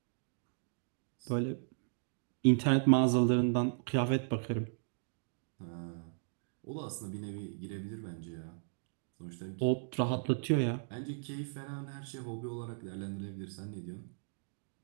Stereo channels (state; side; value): silent; left; digital silence